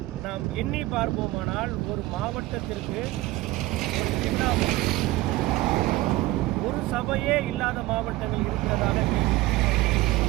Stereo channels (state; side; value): quieter; left; 18.5 dB